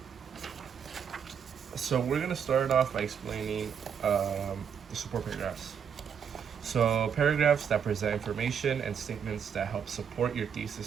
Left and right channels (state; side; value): quieter; left; 7.6 dB